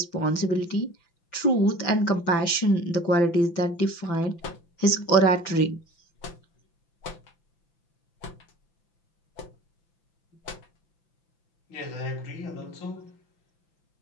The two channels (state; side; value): late; right; 5.9 ms